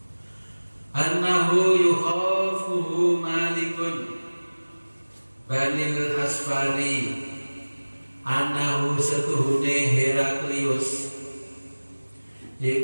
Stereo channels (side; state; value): both; inverted; correlation -1.00